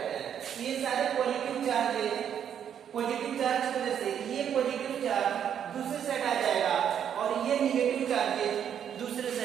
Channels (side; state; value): left; quieter; 8.9 dB